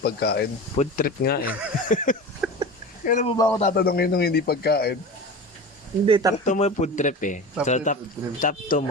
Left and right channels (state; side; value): normal; both; correlation 0.31